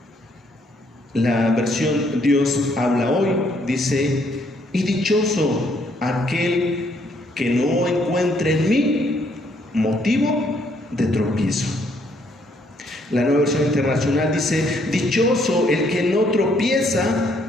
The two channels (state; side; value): normal; both; correlation 0.69